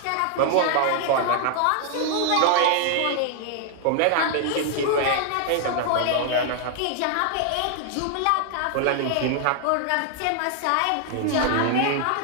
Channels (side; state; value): both; different; correlation 0.00